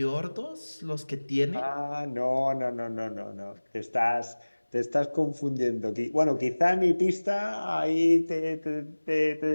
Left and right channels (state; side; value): inverted; both; correlation -1.00